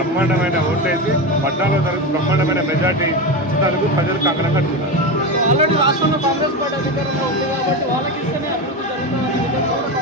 ఓటేసి 14వ తారీఖు బ్రహ్మాండమైన మెజార్టీ ఇచ్చినందుకు ప్రజలు కంకణం కట్టుకున్నారు. ఆల్రెడీ రాష్ట్రంలో కాంగ్రెస్ పార్టీ అధికారంలో ఉంది కాబట్టి వాళ్ళకి ఇస్తేనే అభివృద్ధి జరుగుతుందని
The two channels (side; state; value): both; normal; correlation 0.19